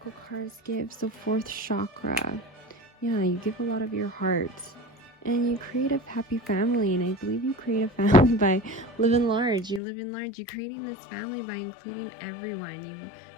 cards give. So 4th chakra. Yeah, you give a lot of your heart. And you create a happy family. And I believe you create a family by living large. You live in large. You're creating this family by including everyone.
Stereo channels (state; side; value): drops out; right; at 9.8 s